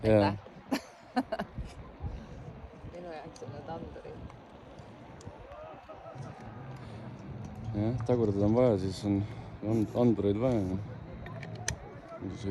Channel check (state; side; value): identical; both; correlation 1.00